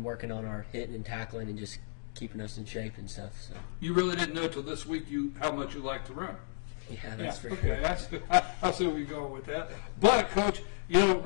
working on our hitting and tackling and just keeping us in shape and stuff. So You really didn't know till this week how much you like to run. yeah, that's for okay. sure. I see where you're going with that. But, Coach,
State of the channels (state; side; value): silent; right; digital silence